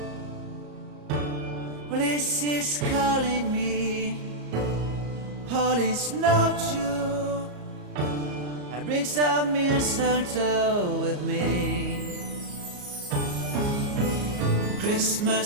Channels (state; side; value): late; left; 34 ms